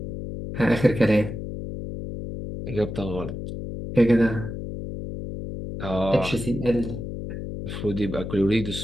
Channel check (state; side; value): noise; left; hum, 7 dB below the sound